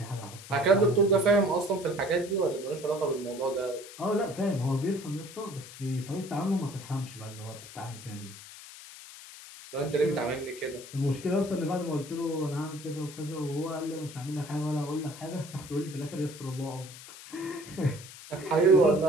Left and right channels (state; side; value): noise; left; hiss, 15 dB below the sound